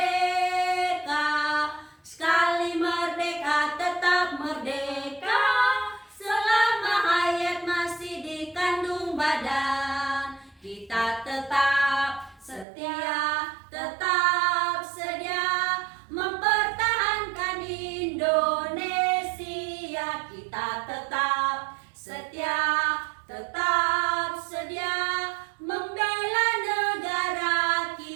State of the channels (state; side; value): drops out; left; at 12.7 s